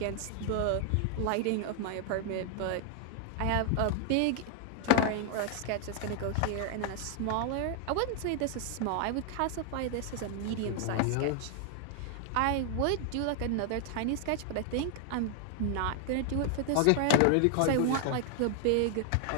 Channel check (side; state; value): both; different; correlation 0.00